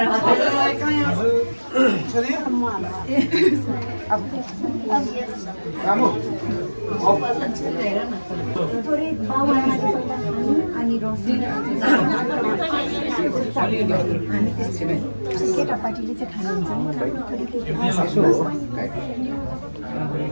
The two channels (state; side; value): inverted; both; correlation -1.00